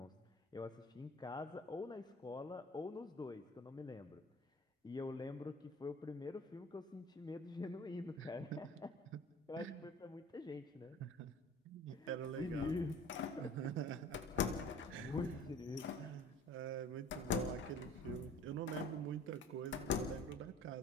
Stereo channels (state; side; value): normal; both; correlation 0.46